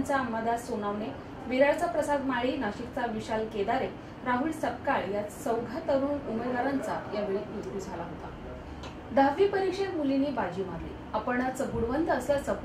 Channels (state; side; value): identical; both; correlation 1.00